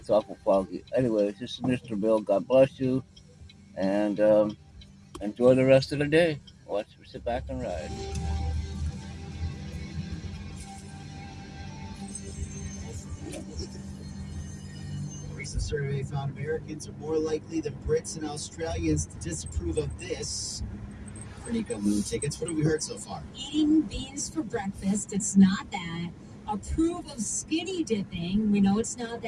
awful foggy. Anyways, this is Mr. Bill. God bless you, and enjoy the rest of the day. Sit back and ride. A recent survey found Americans are more likely than Brits and Australians to disapprove of this. Renika, movie tickets. What have we heard so far? Eating beans for breakfast, it's not that. Approve of skinny dipping, we know it's not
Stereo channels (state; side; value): identical; both; correlation 1.00